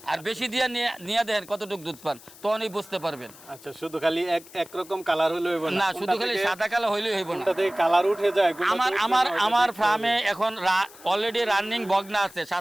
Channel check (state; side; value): noise; left; hiss, 21 dB below the sound